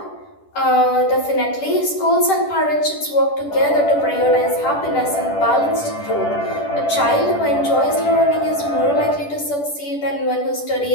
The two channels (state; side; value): late; right; 10 ms